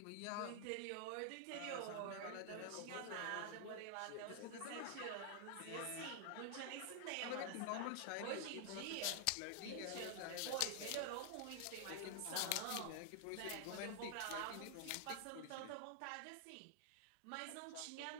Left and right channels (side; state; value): both; different; correlation 0.00